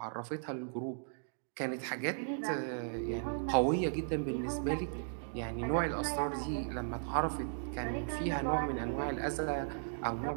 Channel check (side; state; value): left; silent; digital silence